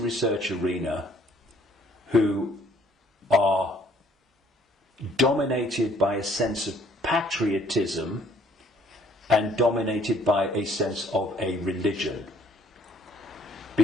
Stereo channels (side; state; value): both; normal; correlation 0.61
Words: arena who are dominated by a sense of patriotism and dominated by a sense of a religion.